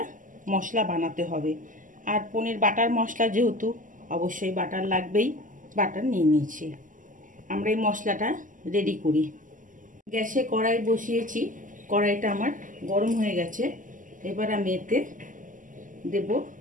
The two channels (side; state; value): left; late; 0.38 ms